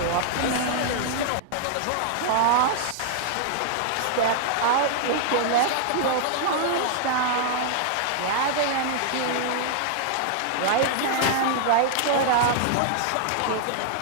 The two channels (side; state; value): both; different; correlation -0.01